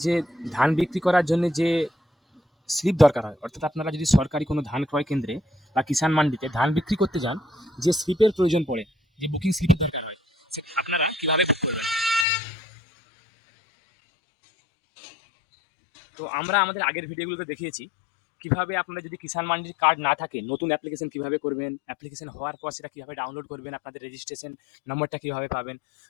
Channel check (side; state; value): right; drops out; at 12.2 s